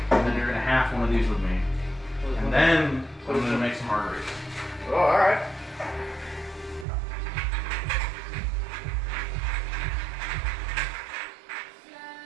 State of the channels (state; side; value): drops out; left; at 6.9 s